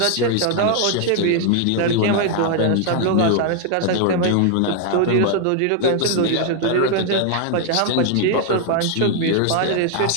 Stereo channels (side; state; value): both; different; correlation 0.00